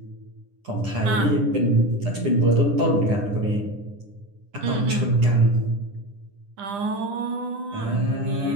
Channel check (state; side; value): late; left; 9.9 ms